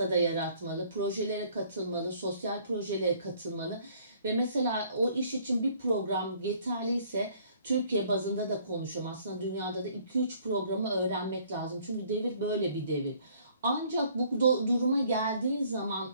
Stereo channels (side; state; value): both; inverted; correlation -0.60